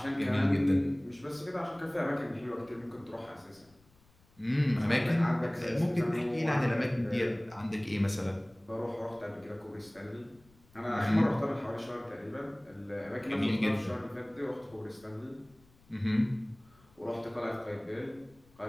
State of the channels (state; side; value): noise; left; rumble, 30 dB below the sound